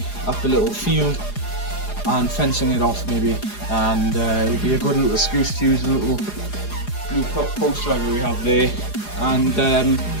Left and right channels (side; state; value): right; late; 4.9 ms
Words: up a little field and fencing it off maybe. And it would be a good little excuse to use the little blue post driver we have there. And